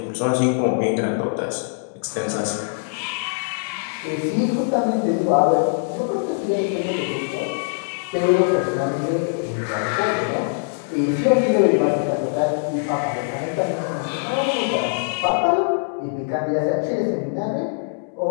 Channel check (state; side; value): silent; right; 64 dB below the other